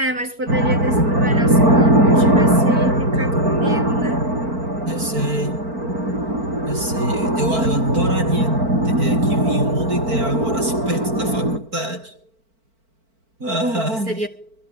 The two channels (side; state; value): left; late; 4.5 ms